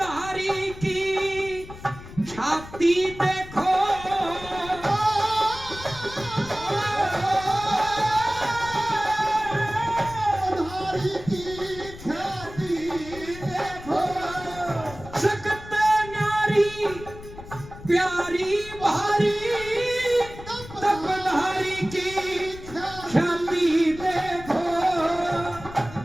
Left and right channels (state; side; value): noise; left; rumble, 15 dB below the sound